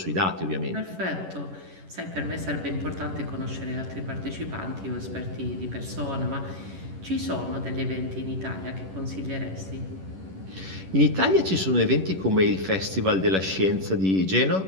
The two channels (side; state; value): left; late; 11 ms